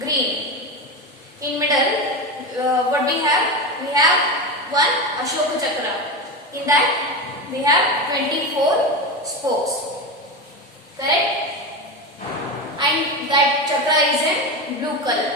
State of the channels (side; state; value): both; normal; correlation 0.19